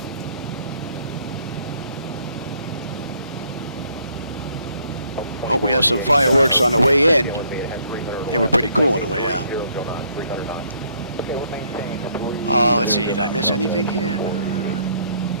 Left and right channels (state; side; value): inverted; both; correlation -0.66